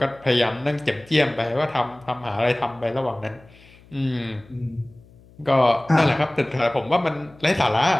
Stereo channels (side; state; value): left; noise; hum, 26 dB below the sound